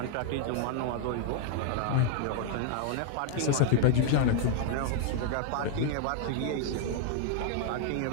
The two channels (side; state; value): both; different; correlation 0.00